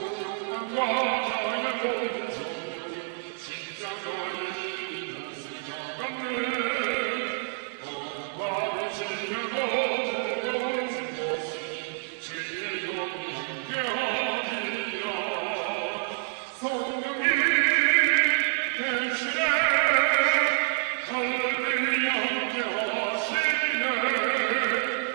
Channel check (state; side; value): silent; left; digital silence